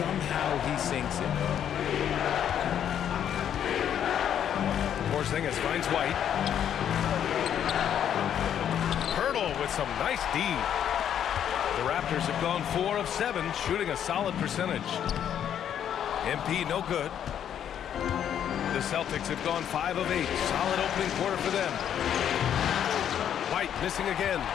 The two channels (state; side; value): quieter; right; 9.5 dB